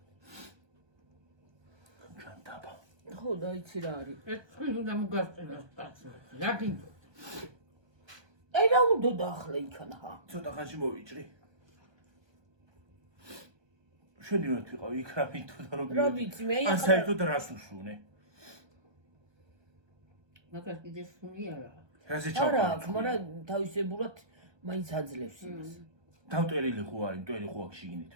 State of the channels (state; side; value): late; left; 1.2 ms